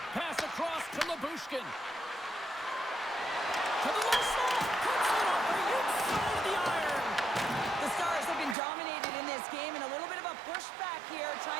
Pass across to Lyubushkin. To the low slot. Cuts it off the inside of the iron. The Stars have been dominated in this game, and a little bit of a pushback here,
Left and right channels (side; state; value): left; drops out; at 8.6 s